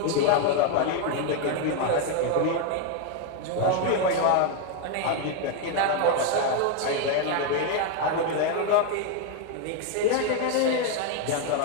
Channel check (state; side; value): different; both; correlation 0.01